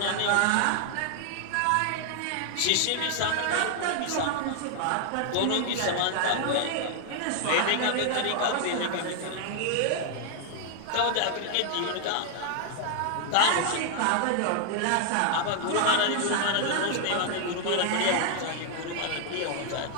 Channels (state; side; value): different; both; correlation 0.00